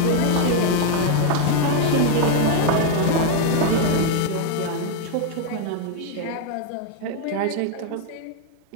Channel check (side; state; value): both; different; correlation 0.00